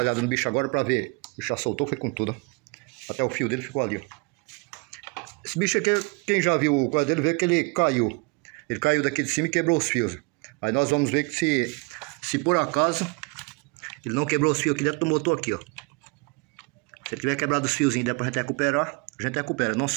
olhada no bicho agora para ver. O bicho já soltou, foi com tudo. Até o fio dele ficou ali, ó. Esse bicho aqui, quem já viu o coisa dele, vê que ele caiu. Ele caiu daqui de cima e quebrou os fios. Aí nós vamos ver que se por acaso ele não quebrou os fios aqui dentro do motor aqui, ó. Se ele tiver quebrado os fiozinhos, der pra gente recuperar, a gente recupera. Não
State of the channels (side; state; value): left; quieter; 29.6 dB